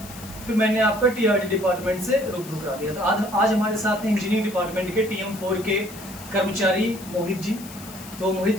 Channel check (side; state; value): left; noise; hiss, 16 dB below the sound